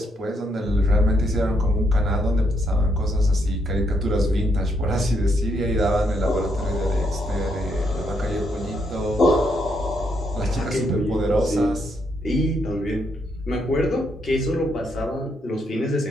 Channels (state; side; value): normal; both; correlation 0.76